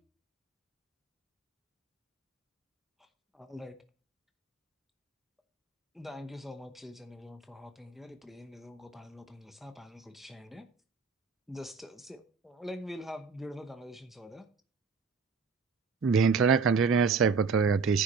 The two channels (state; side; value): quieter; left; 5.1 dB